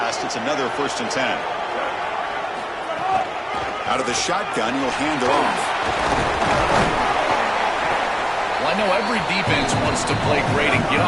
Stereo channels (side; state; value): both; identical; correlation 1.00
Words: It's another 1st and 10. Out of the shotgun, he'll hand it off. Well, I know every defense wants to play great and get